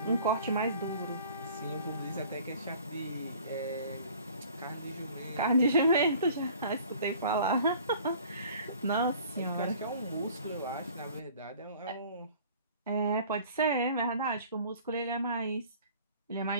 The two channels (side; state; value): both; inverted; correlation -0.50